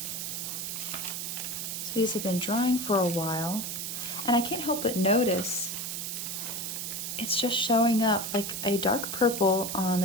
So these have been drying for a while, and I can't help but notice it's just showing up like a dark purple on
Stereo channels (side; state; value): right; noise; hiss, 4 dB below the sound